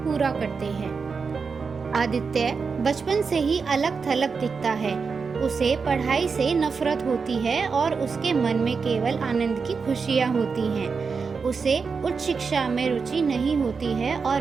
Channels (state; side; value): quieter; left; 5.2 dB